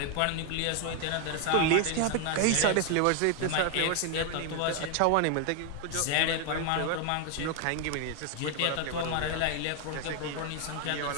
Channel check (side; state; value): both; different; correlation 0.00